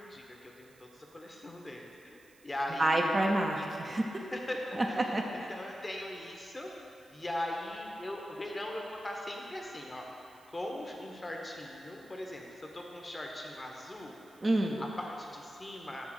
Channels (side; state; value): right; noise; hiss, 28 dB below the sound